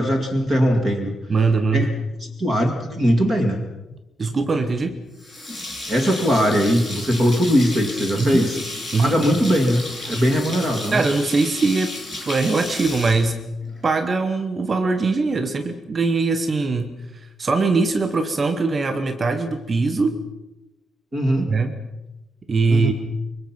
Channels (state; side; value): normal; both; correlation 0.86